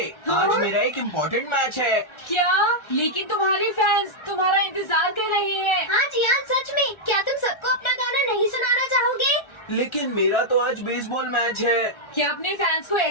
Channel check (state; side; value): late; right; 1.3 ms